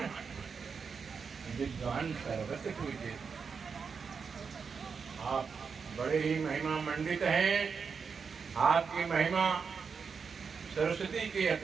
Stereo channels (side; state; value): left; quieter; 5.7 dB